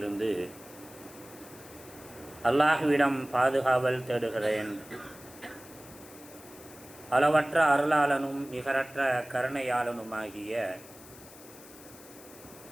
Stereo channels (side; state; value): left; noise; hiss, 19 dB below the sound